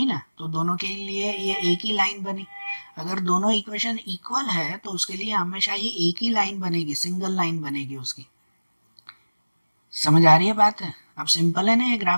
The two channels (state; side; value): inverted; both; correlation -1.00